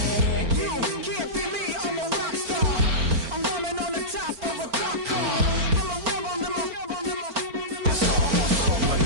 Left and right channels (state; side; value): late; left; 4.4 ms